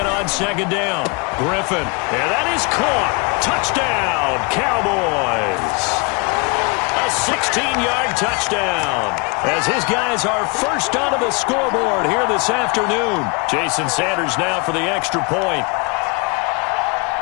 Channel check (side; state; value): right; quieter; 30.1 dB